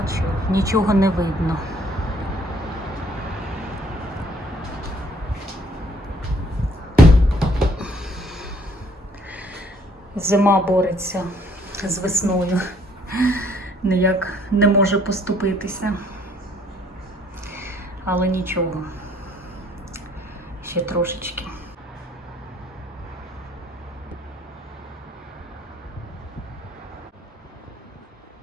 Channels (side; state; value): both; normal; correlation 0.62